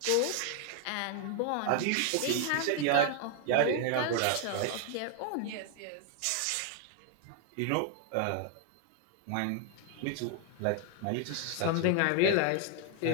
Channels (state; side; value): different; both; correlation 0.00